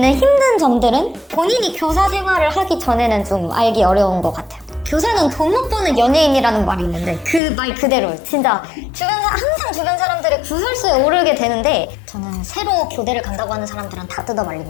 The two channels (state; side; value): drops out; right; at 7.4 s